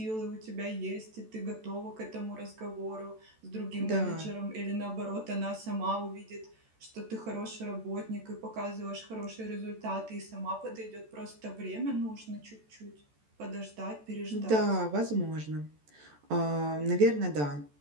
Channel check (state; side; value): late; left; 14 ms